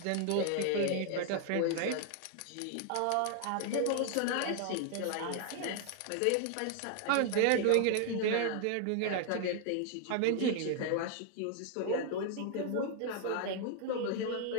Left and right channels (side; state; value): both; different; correlation 0.00